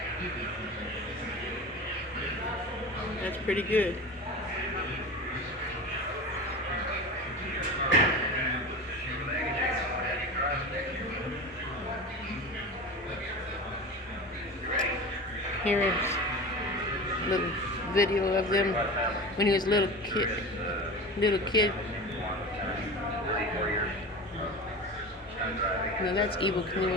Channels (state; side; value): normal; both; correlation 0.30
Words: That's pretty good. Here is a little video of them when he was a little kid. Now that's Evel